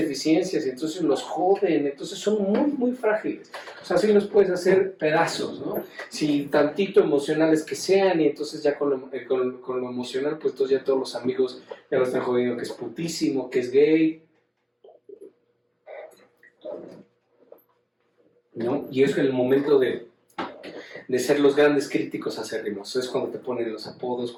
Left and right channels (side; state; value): both; identical; correlation 1.00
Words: y entonces los joden, entonces son muy frágiles. O sea, sí los puedes hacer pedazos, ¿no? Si tantito emocionales que sean, y entonces ya con lo emocional, pues entonces ya todos los amigos ya lo están jodiendo, que es putísimo, que es gay, ¿no? Y es el momento de ser los grandes críticos acérrimos. Es cuando te ponen los apodos,